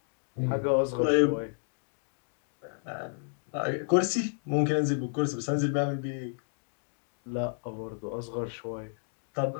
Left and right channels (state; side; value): silent; right; digital silence